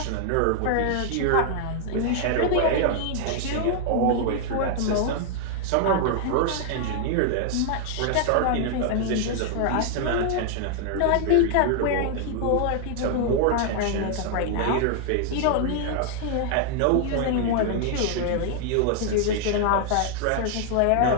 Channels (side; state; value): both; different; correlation 0.00